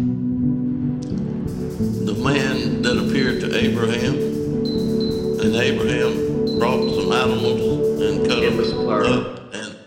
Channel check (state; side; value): identical; both; correlation 1.00